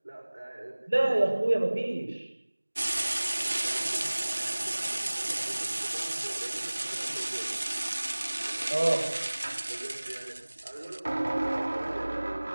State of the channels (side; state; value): both; inverted; correlation -1.00